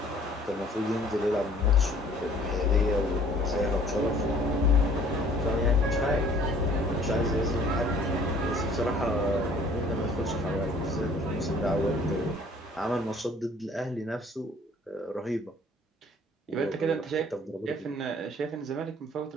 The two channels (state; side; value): normal; both; correlation 0.55